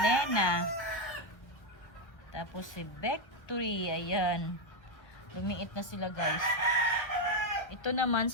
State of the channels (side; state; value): right; late; 1.5 ms